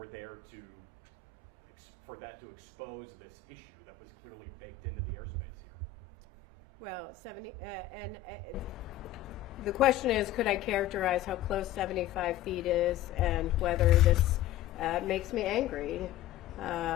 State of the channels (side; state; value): right; quieter; 11.8 dB